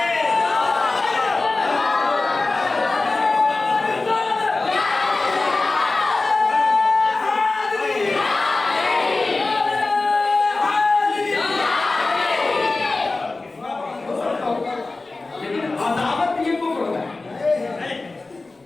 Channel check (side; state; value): right; quieter; 3.4 dB